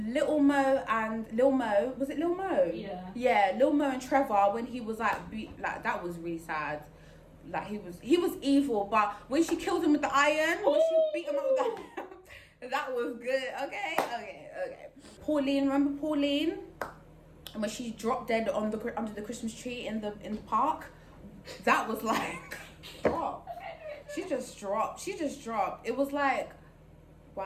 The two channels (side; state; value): both; identical; correlation 1.00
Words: Mo, was it Lil Mo? Yeah. Yeah, Lil Mo and Trevor, when he was like that was really sad. Like, he was evil, but when she killed him with the iron, when she beat him up with that was good. Okay. Pauline, remember Pauline? And when she dropped dead under the Christmas tree in the park, that was like, drop. She just dropped. It was like,